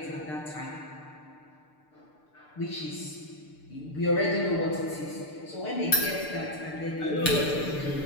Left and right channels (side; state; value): right; late; 6.7 ms